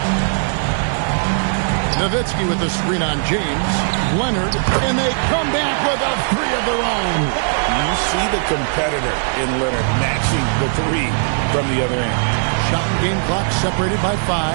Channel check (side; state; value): left; silent; digital silence